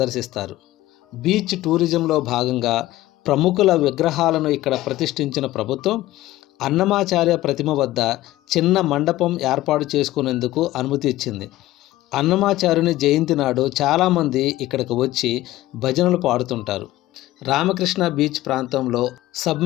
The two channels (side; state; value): right; quieter; 16.2 dB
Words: బీచ్ టూరిజంలో భాగంగా ప్రముఖుల విగ్రహాలను ఇక్కడ ప్రతిష్ఠించిన ప్రభుత్వం అన్నమాచార్య ప్రతిమ వద్ద చిన్న మండపం ఏర్పాటు చేసుకునేందుకు అనుమతి ఇచ్చింది. అన్నమాచార్యుని జయంతి నాడు చాలామంది ఇక్కడికి వచ్చి భజనలు పాడుతుంటారు. రామకృష్ణ బీచ్ ప్రాంతంలో